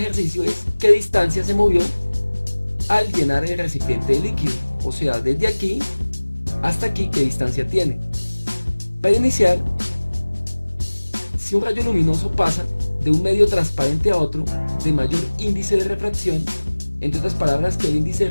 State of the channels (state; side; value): inverted; both; correlation -1.00